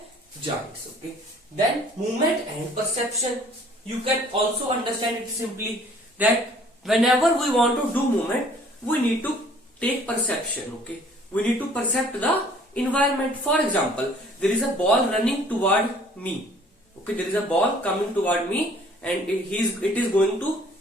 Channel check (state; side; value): normal; both; correlation 0.55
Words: joints. Okay, then movement and perception, you can also understand it simply that whenever we want to do movement, we need to take perception. Okay, we need to percept the environment. For example, there is a ball running toward me. Okay, there is a ball coming toward me, and it is going to